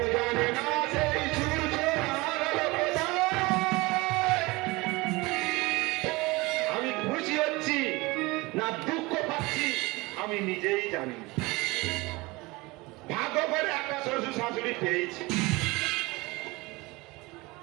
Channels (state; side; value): quieter; left; 23.1 dB